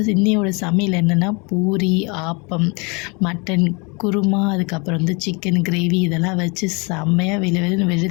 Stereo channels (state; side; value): quieter; right; 30.4 dB